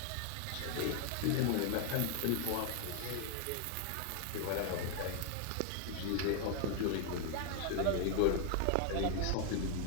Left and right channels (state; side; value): different; both; correlation 0.00